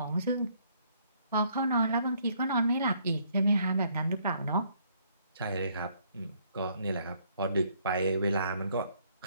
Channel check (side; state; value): both; inverted; correlation -0.67